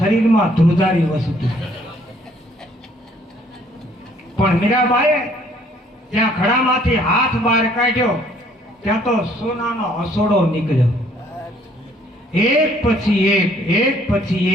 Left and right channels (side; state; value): both; normal; correlation 0.62